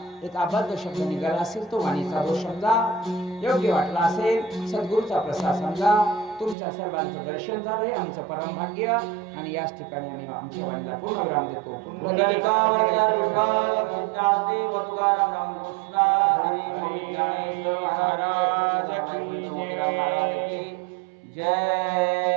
एक अबद्ध शब्द निघाला असेल तो वाणीचा दोष समजा, योग्य वाटला असेल सद्गुरूचा प्रसाद समजा. तुमच्या सर्वांचं दर्शन झालं हे आमचं परम भाग्य. आणि याच ठिकाणी आम्ही आमच्या वाणीला पूर्ण विराम देतो.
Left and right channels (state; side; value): drops out; left; at 6.6 s